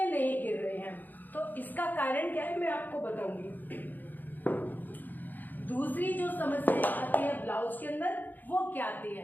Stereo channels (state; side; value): late; right; 0.086 ms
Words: नहीं गिर रहे हैं। तो इसका कारण क्या है मैं आपको बताऊंगी। दूसरी जो समस्या आती है ब्लाउज के अंदर वो क्या आती